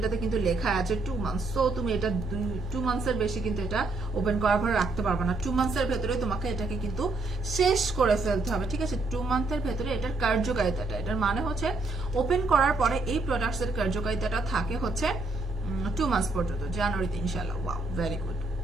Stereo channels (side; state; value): left; quieter; 3.2 dB